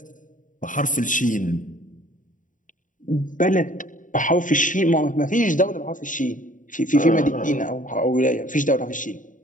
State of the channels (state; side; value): late; right; 0.38 ms